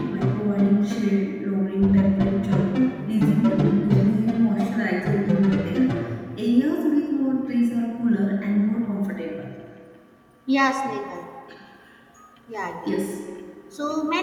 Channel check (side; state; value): both; identical; correlation 1.00